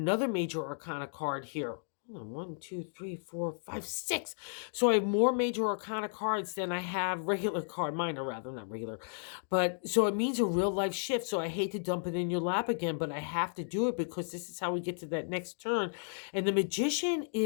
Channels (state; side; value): silent; right; digital silence